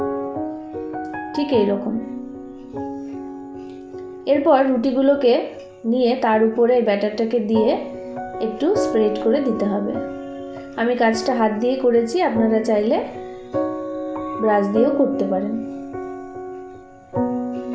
ঠিক এইরকম। এরপর রুটিগুলোকে নিয়ে তার উপরে ব্যাটারটাকে দিয়ে একটু স্প্রেড করে দিতে হবে। আমি কাজটা হাত দিয়ে করেছি, আপনারা চাইলে ব্রাশ দিয়েও করতে পারেন।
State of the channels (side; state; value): both; identical; correlation 1.00